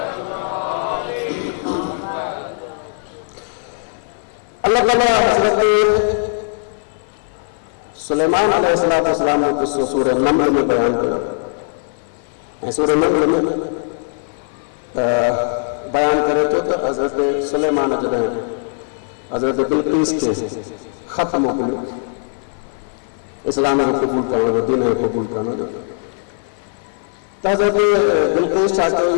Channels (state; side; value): silent; right; 55 dB below the other